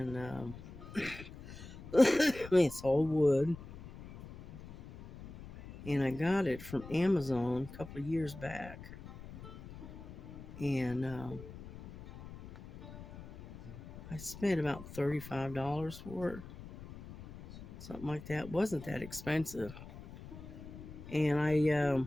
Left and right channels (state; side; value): noise; left; rumble, 14 dB below the sound